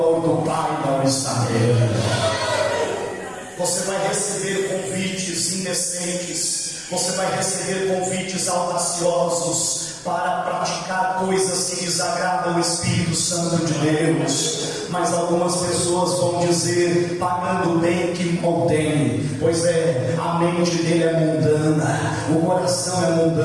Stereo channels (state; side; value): identical; both; correlation 1.00